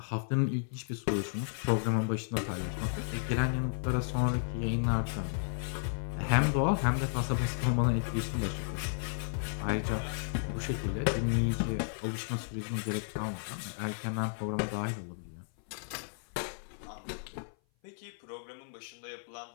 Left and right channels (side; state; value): right; silent; 55 dB below the other